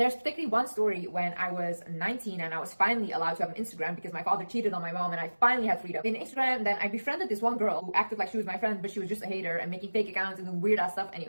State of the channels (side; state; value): both; inverted; correlation -1.00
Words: particularly one story when I was 19 and I was finally allowed to have an Instagram because my father cheated on my mom and I finally had freedom. In Instagram, then I befriended this one girl who acted like she was my friend, but she was just a hater and making fake accounts and doing weird ass stuff